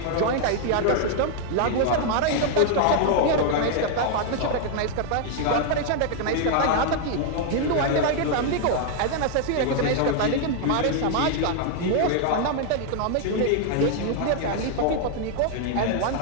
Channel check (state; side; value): different; both; correlation 0.00